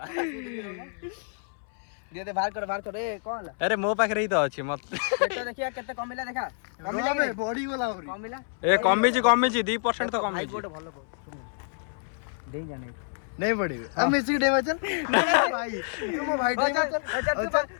दे बाहर कर ए कोन अरे मो पाखरे ही तो अछि मत केते देखिया केते कमिला देखा कमिला बे बॉडी वाला होरी कमिला ए कमी जी 2% तो कमी भाई गोटे भलो दे जाने नहीं पड़ेगा हम मिसी डे चल नहीं भाई तुम भाई डे चल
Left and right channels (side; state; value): right; silent; 59 dB below the other